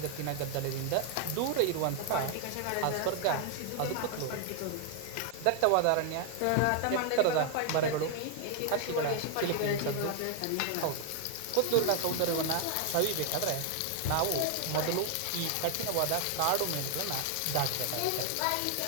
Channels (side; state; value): both; different; correlation 0.00